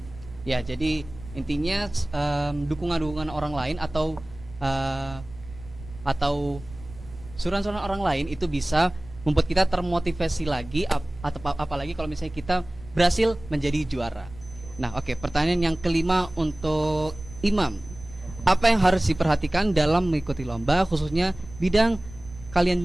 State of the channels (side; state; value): right; noise; rumble, 16 dB below the sound